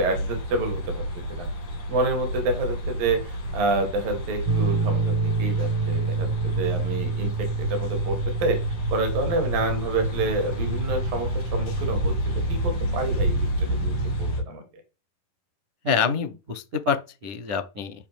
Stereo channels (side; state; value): left; late; 10 ms